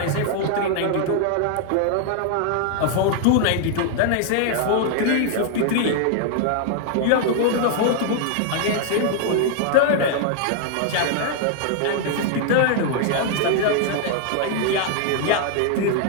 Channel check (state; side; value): different; both; correlation 0.00